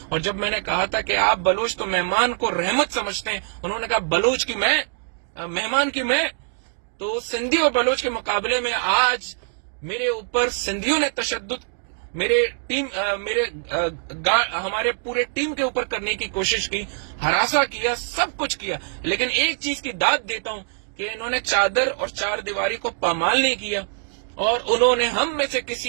اور جب میں نے کہا تھا کہ آپ بلوچ تو مہمان کو رحمت سمجھتے ہیں, انہوں نے کہا بلوچ کی میں, مہمان کی میں. تو سندھی اور بلوچ کے مقابلے میں آج میرے اوپر سندھیوں نے تشدد ہمارے پورے ٹیم کے اوپر کرنے کی کوشش کی, ہراساں کیا, سب کچھ کیا. لیکن ایک چیز کی داد دیتا ہوں کہ انہوں نے چادر اور چار دیواری کو پامال نہیں کیا, اور انہوں نے ہم میں سے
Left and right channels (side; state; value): left; silent; digital silence